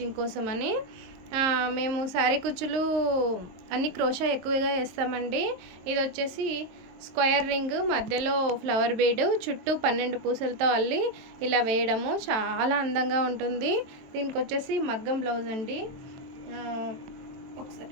కోసం అని. మేము శారీ కుచ్చులు అన్ని క్రోషా ఎక్కువగా వేస్తామండి. ఇది వచ్చేసి స్క్వేర్ రింగ్, మధ్యలో ఫ్లవర్ బీడ్, చుట్టూ 12 పూసలతో అల్లి ఇలా వేయడము చాలా అందంగా ఉంటుంది. దీనికి వచ్చేసి మగ్గం బ్లౌజ్ అండి.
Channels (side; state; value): left; late; 22 ms